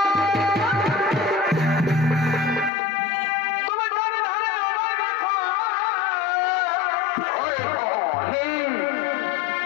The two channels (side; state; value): right; drops out; at 2.7 s